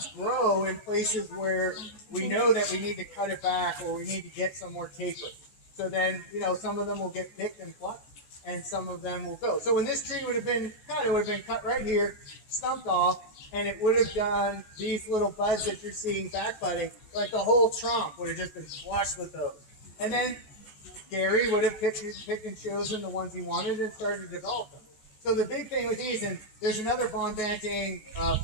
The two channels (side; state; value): right; late; 14 ms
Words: grow in places where we know that we need to cut it back or we need to get some more taper. So then, some of them will get picked and plucked, and some of them will go. So when this tree would have been cut, it would have been cut right here, stumped off, and it would have done these little buds that you're seeing back budding, like the whole trunk would have just been flushed with those. And then Gary would have picked and chosen the ones he wanted and started to develop them. So the big thing with these, and there's another Von Banting